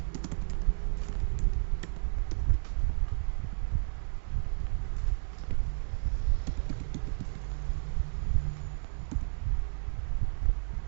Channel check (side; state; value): left; silent; digital silence